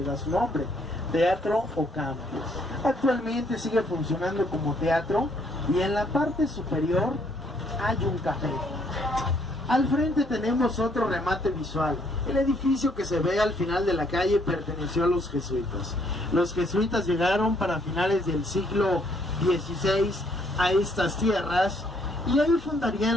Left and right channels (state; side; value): normal; both; correlation 0.68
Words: da su nombre, Teatro Ocampo. Actualmente sigue funcionando como teatro y en la parte superior hay un café. Al frente tenemos otro remate visual. El edificio que se ve al final de la calle perteneció a los jesuitas. Los jesuitas llegaron para finales del siglo XVI a estas tierras y ahí